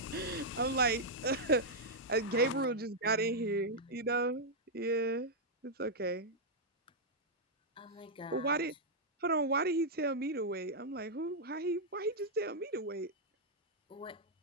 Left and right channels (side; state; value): both; normal; correlation -0.05